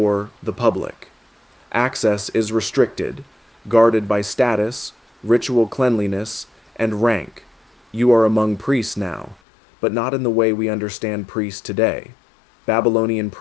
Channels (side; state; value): right; drops out; at 9.3 s